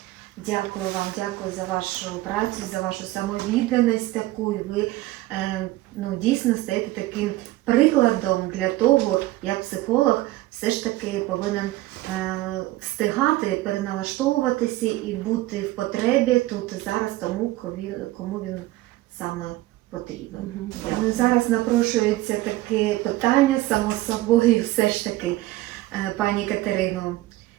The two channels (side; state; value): left; quieter; 17.4 dB